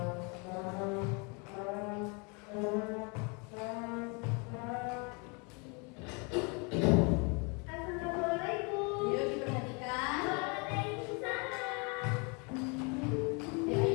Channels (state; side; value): quieter; right; 32.2 dB